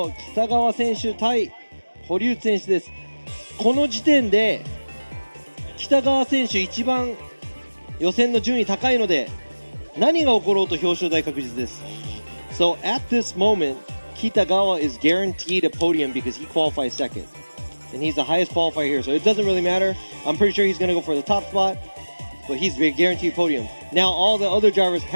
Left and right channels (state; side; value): inverted; both; correlation -1.00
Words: 北川選手対堀内選手です。この時点で北川選手一番予選の順位高いので何が起ころうと表彰台確実です。So at this moment, Kitagawa is guaranteed a podium because he qualifies second. And he's the highest qualifier here, so it doesn't really matter. I'm pretty sure he's going to go for the top spot, but he's a guaranteed podium. Now all the other drivers